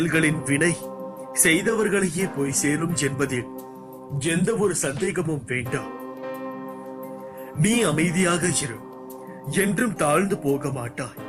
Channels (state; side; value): identical; both; correlation 1.00